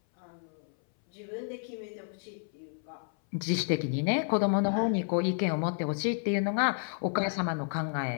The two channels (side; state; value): right; silent; 57 dB below the other